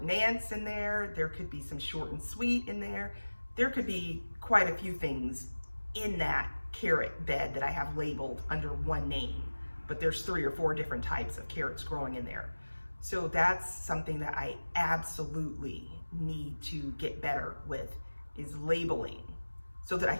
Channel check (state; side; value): inverted; both; correlation -1.00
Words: Nance in there, there could be some short and sweet in there, there could be quite a few things in that carrot bed that I have labeled under one name, but there's 3 or 4 different types of carrots growing in there. So that's something that I absolutely need to get better with, is labeling, so that I